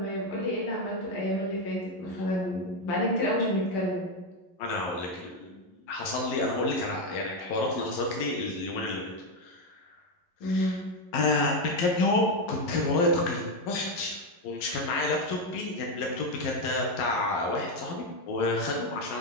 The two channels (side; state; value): right; late; 11 ms